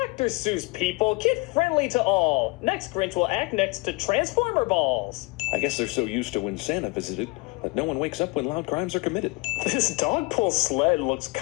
Seuss people, kid friendly to all. Next Grinch will act next to Transformer balls. I guess they're so used to when Santa visited that no one wakes up when loud crimes are committed. This dog pull sled looks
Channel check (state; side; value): quieter; right; 26.1 dB